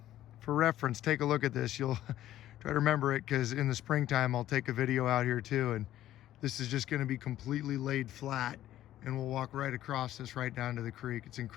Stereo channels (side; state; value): right; quieter; 13.2 dB